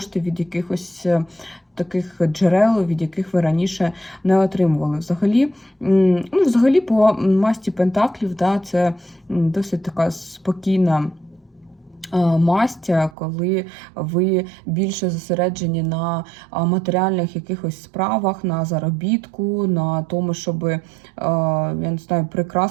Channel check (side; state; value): left; drops out; at 13.1 s